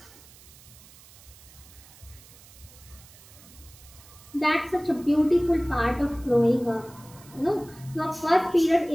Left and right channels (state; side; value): noise; right; hiss, 22 dB below the sound